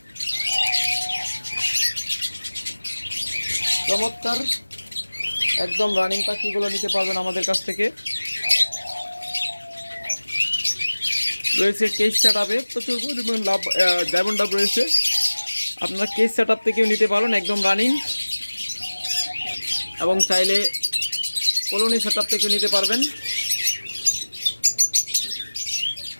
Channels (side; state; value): both; inverted; correlation -1.00